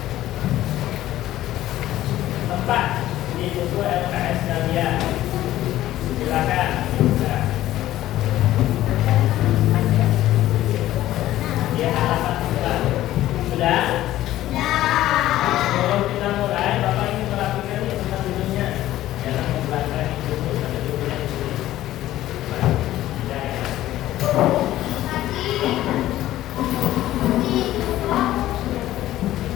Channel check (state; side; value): quieter; right; 14.4 dB